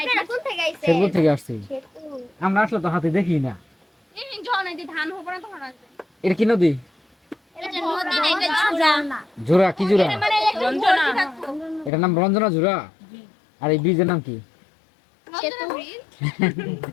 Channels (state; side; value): drops out; right; at 11.9 s